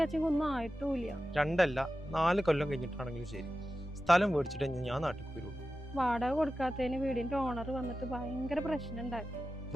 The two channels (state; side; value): normal; both; correlation 0.93